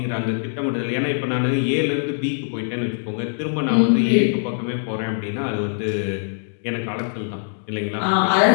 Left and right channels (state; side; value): silent; right; digital silence